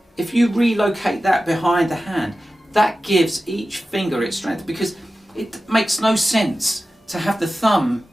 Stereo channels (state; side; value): normal; both; correlation 0.94